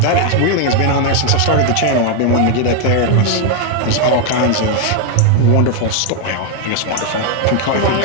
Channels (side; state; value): both; different; correlation 0.01